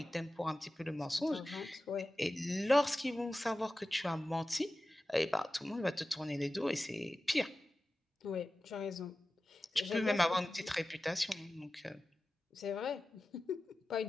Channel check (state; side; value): normal; both; correlation 0.95